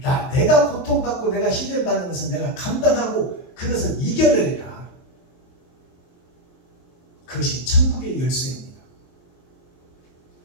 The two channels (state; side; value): late; right; 23 ms